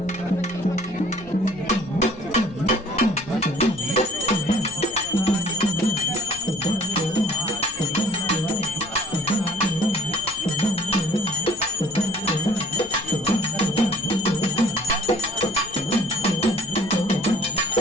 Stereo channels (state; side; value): noise; left; rumble, 20 dB below the sound